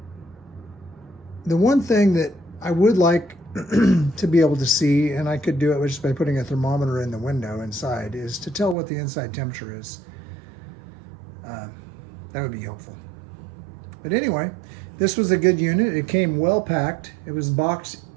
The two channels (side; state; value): left; drops out; at 8.8 s